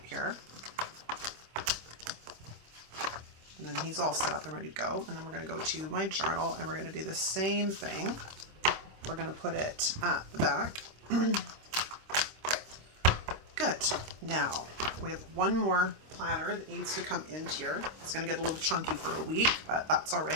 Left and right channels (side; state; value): left; late; 26 ms